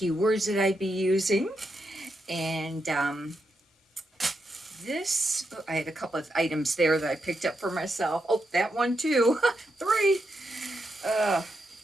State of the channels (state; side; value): normal; both; correlation 0.84